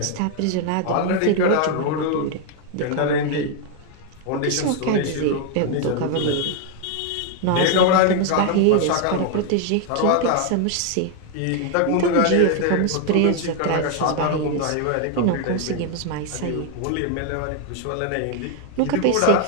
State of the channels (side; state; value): both; different; correlation 0.01